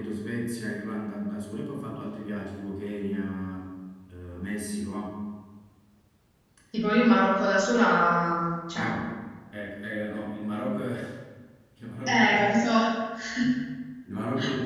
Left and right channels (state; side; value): identical; both; correlation 1.00